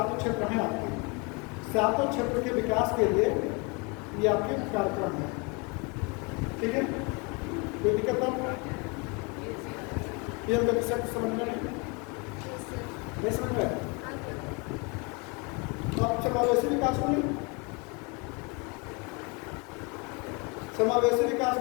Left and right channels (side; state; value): right; quieter; 30.3 dB